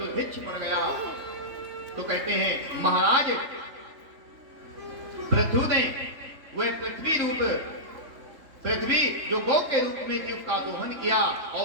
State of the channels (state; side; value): late; left; 3.2 ms